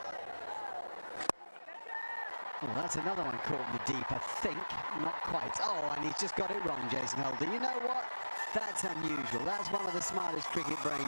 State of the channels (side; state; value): both; inverted; correlation -1.00